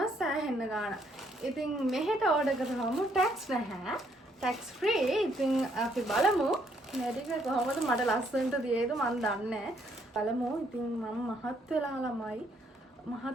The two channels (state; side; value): normal; both; correlation 0.70